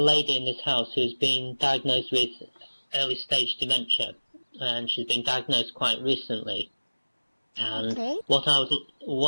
in this house who has been diagnosed with early stage dementia, and she's been diagnosed quite recently. And Okay. what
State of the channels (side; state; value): both; inverted; correlation -1.00